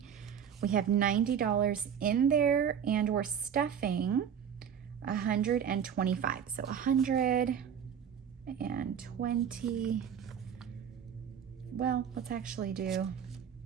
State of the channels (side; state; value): left; quieter; 8.2 dB